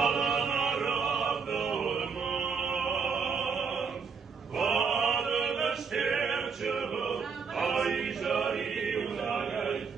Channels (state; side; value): quieter; left; 5.7 dB